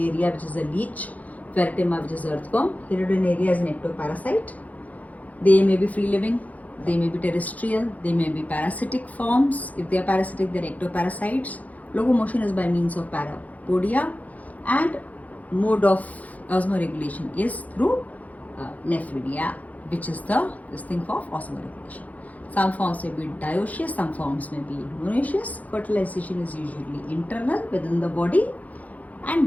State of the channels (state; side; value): late; right; 0.075 ms